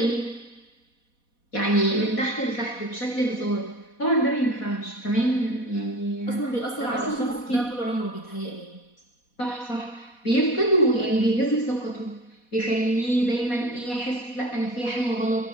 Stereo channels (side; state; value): right; late; 4.1 ms